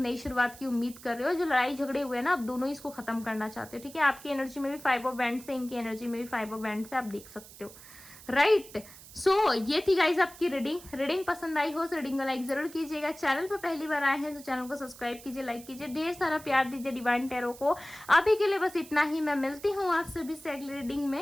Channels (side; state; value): right; noise; hiss, 18 dB below the sound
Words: शुरुआत की उम्मीद कर रहे हो। जो लड़ाई झगड़े हुए ना, आप दोनों ही इसको खत्म करना चाहते हो। ठीक है, आपकी एनर्जी में भी 5 ऑफ वैंड्स है, इनकी एनर्जी में भी 5 ऑफ वैंड्स है, आप देख सकते हो, राइट। सो ये थी गाइज आपकी रीडिंग पसंद आई हो तो रीडिंग को लाइक जरूर कीजिएगा। चैनल पर पहली बार आए हैं तो चैनल को सब्सक्राइब कीजिए, लाइक कीजिए, ढेर सारा प्यार दीजिए डिवाइन टैरो को। अभी के लिए बस इतना ही, मैं मिलती हूँ आप सभी से अगली रीडिंग